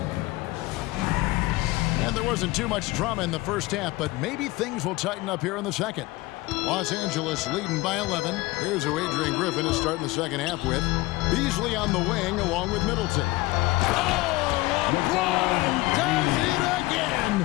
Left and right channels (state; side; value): quieter; right; 20.5 dB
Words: And there wasn't too much drama in the first half, but maybe things will tighten up here in the second. Los Angeles leading by 11. Here's who Adrian Griffin is starting the second half with. Beasley on the wing along with Middleton. Oh, LeBron does it again!